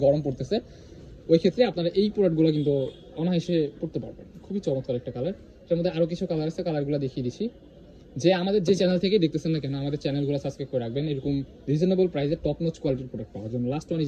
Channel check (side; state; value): both; identical; correlation 1.00